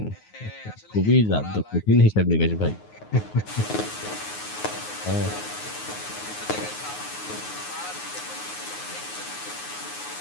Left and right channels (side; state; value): right; late; 9.5 ms